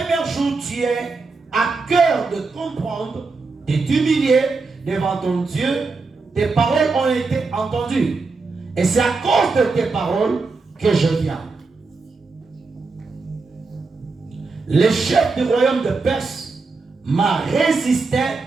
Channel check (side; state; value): left; quieter; 4.1 dB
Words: jour, tu es à cœur de comprendre, de t'humilier devant ton Dieu. Tes paroles ont été entendues. Et c'est à cause de tes paroles que je viens. Le chef du royaume de Perse m'a résisté